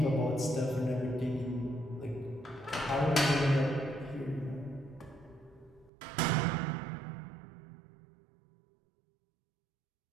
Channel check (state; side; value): drops out; left; at 5.9 s